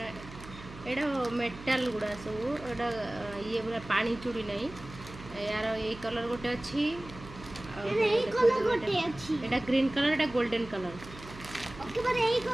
एटा मेटाल गुड़ा सब एटा ये पूरा पानी चूड़ी नहीं यार ये कलर गोटे अच्छी एटा ग्रीन कलर एटा गोल्डन कलर ओके पर एई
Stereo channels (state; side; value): noise; right; hum, 15 dB below the sound